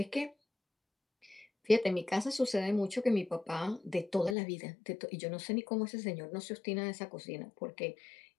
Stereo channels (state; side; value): drops out; right; at 4.4 s